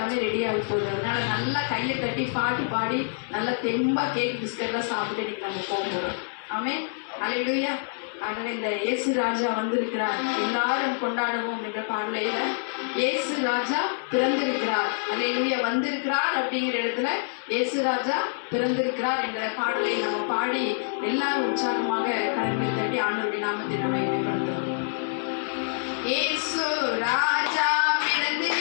ரெடியாக போகுது. அதனால நல்லா கையை தட்டி பாட்டு பாடி நல்லா தெம்பாக கேக் பிஸ்கட்லாம் சாப்பிட்டு இன்னைக்கு நம்ம போகிறோம். ஆமென், அல்லேலூயா. ஆகவே இந்த இயேசு ராஜா வந்திருக்கிறார், எல்லாரும் கொண்டாடுவோம் என்ற பாடலையில இயேசு ராஜா பிறந்திருக்கிறார், அல்லேலூயா, வந்திருக்கிறார் அப்படிங்கிற இடத்துல இயேசு ராஜா பிறந்திருக்கிறார் என்ற பாடலை நம்ம பாடி எல்லாரும் உற்சாகமாக கரங்களை தட்டி ஆண்டவருடைய நாமத்தை நம்ம வெளிப்படுத்துகிறோம். இயேசு ராஜா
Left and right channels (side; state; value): right; silent; digital silence